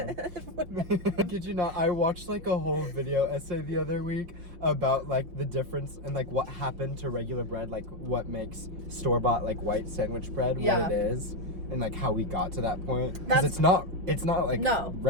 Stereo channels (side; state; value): left; late; 5.7 ms